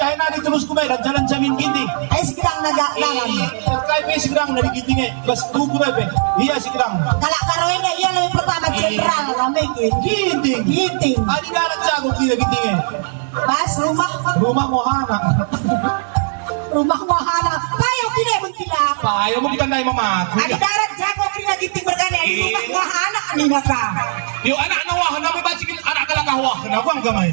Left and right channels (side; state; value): left; silent; digital silence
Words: terus kumay, jalan jamin ginting. Segedang nagalalan. Kaya pa segedang na gintingnya, bas kukuray pa. Iya segedang. Kalau karoin na iya lebih pertama general ramai Ginting. Ginting. Adi dalat jago kita gintingnya. Pas Rumah mohana. Rumah mahana. Payaw pinay magkila. Ayaw mo kita na mama. Adi darat jago kina ginting bergana. Rumah mahana kanina ka. Yung anak na wahan na may basigin, anak ka lang kawahan. Ako ang gamay.